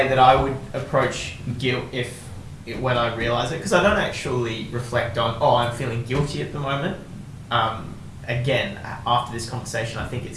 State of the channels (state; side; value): identical; both; correlation 1.00